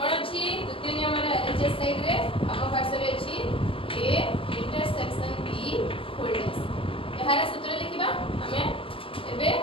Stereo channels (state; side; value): late; right; 0.26 ms